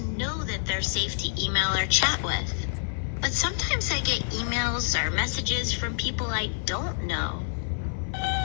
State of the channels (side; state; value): right; silent; 60 dB below the other